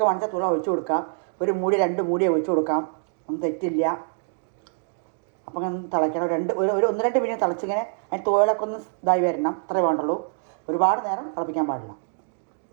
വാങ്ങിച്ചാൽ തുള ഒഴിച്ചു കൊടുക്കാം. ഒരു മൂടി 2 മൂടി ഒഴിച്ചു കൊടുക്കാം, ഒന്നും തെറ്റില്ല. അപ്പം അങ്ങനെ തിളയ്ക്കണം. ഒരു 1-2 മിനിറ്റ് തിളച്ചിങ്ങനെ അതിന് തോലൊക്കെ ഒന്ന് ഇതായി വരണം, അത്രേ വേണ്ടുള്ളൂ. ഒരുപാട് നേരം തിളപ്പിക്കാൻ പാടില്ല.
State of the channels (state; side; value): silent; left; digital silence